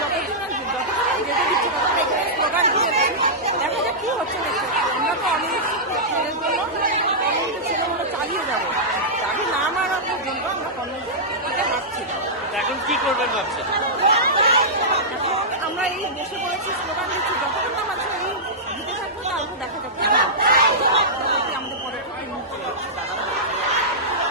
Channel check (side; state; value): both; normal; correlation -0.13